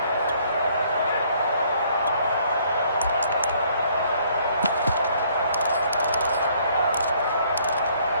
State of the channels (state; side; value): inverted; both; correlation -0.63